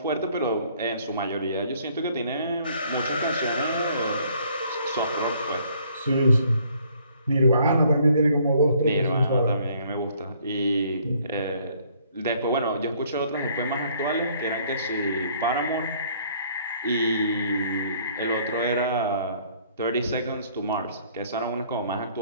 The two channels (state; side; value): inverted; both; correlation -0.62